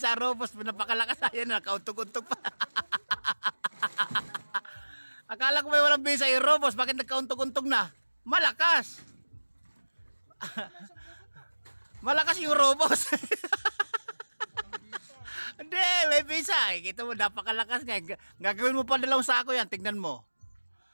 robos. Napakalakas. Ayan, nakauntog-untog pa. Akala ko may walang visa yung robos. Bakit nagkauntog-untog na? Malakas. Malakas yung robos. Hindi, may visa. Kita mo, napakalakas nga. Gagawin mo pa 2 sako yan. Tingnan mo.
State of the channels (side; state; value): both; inverted; correlation -1.00